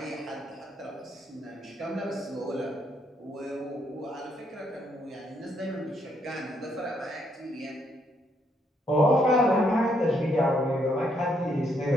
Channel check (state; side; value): normal; both; correlation 0.73